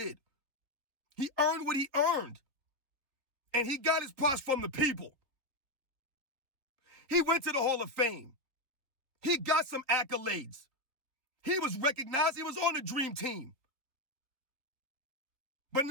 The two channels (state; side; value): late; left; 3.7 ms